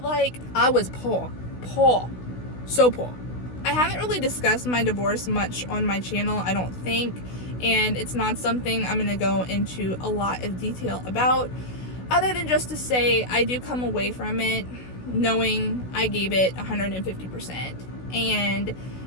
Like, I was poor, so poor. I haven't really discussed my divorce much on my channel, I don't think, and it's not something I'm gonna go into a lot of detail about, other than just to say I do come away from it knowing I gave it 150%, and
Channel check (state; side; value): late; right; 16 ms